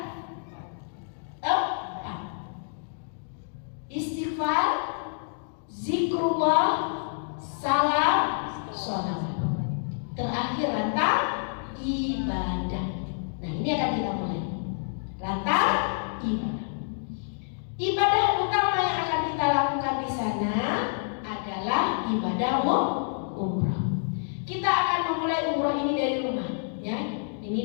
4. Istighfar, zikrullah, salam, sholawat. Terakhir rantang ibadah. Nah, ini akan kita mulai. Rantang ibadah. Ibadah utama yang akan kita lakukan di sana adalah ibadah umrah. Kita akan memulai umrah ini dari rumah, ya. Ini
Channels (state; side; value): silent; right; digital silence